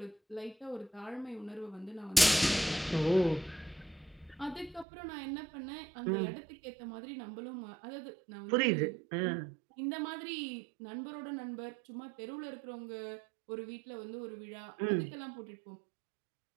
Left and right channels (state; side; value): drops out; left; at 4.9 s